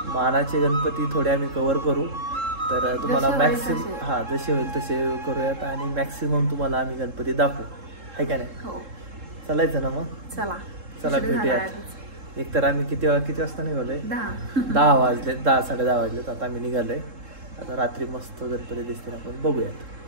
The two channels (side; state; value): left; late; 3.7 ms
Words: मानाचे गणपती थोडे आम्ही कव्हर करू. तर तुम्हाला मॅक्सिमम जसे होईल तसे करूयात आणि मॅक्सिमम तुम्हाला आम्ही गणपती दाखवू, आहे का नाही? चालायचं ना मग? चला भेटूयात. एक तर आम्ही किती वाजता निघालोय? 10 वाजले, 10-10:30 वाजलेत. आता आम्ही निघालोय. आता रात्री मस्त गणपती दिसतील, आपण